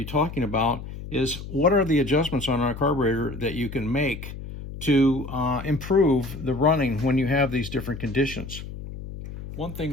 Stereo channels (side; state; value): left; noise; hum, 10 dB below the sound